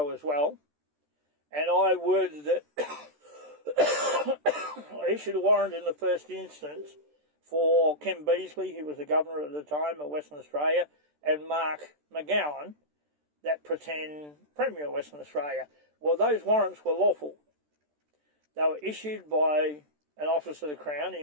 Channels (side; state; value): left; late; 13 ms